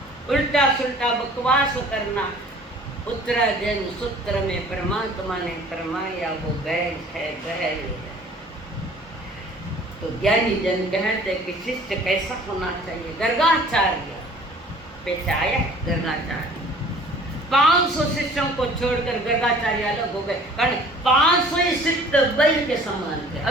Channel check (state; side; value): normal; both; correlation 0.50